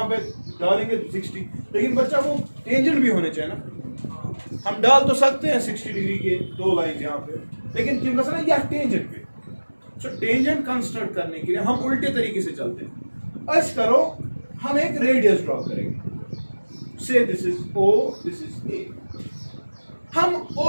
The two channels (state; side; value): inverted; both; correlation -1.00